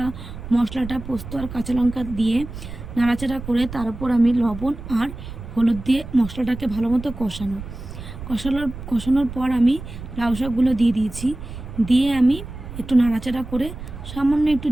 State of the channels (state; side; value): noise; right; rumble, 11 dB below the sound